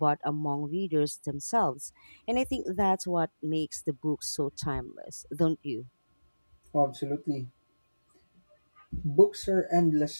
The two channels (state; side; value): inverted; both; correlation -1.00